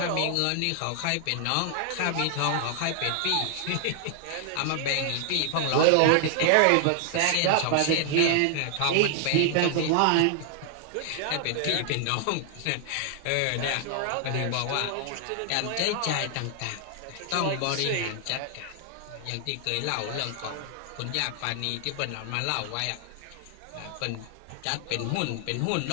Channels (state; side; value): different; both; correlation 0.00